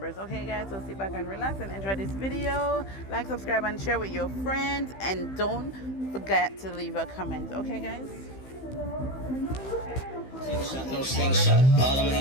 Okay guys, so sit back and relax and enjoy this video. Like, subscribe and share with your friends, and don't forget to leave a comment. Okay guys, Slingshot, no slingshot, all of my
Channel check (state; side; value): late; right; 15 ms